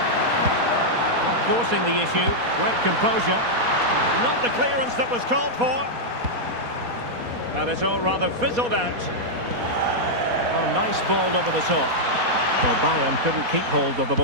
Forcing the issue, great composure. Not the clearance that was called for. And it's all rather fizzled out. Oh, nice ball over the top. Well, Bayern couldn't keep hold of the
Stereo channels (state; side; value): late; left; 4.2 ms